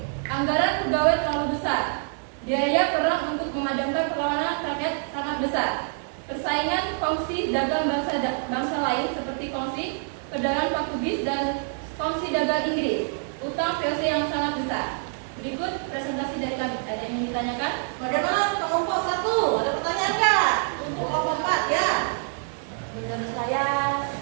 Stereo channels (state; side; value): silent; left; 61 dB below the other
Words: Anggaran pegawai terlalu besar. Biaya perang untuk memadamkan perlawanan rakyat sangat besar. Persaingan kongsi dagang bangsa lain seperti kongsi perdagangan Portugis dan kongsi dagang Inggris. Utang POC yang sangat besar. Berikut presentasi dari kami. Ada yang ingin ditanyakan? Bagaimana kelompok 1? Ada pertanyaan nggak? Untuk kelompok 4 ya? Menurut saya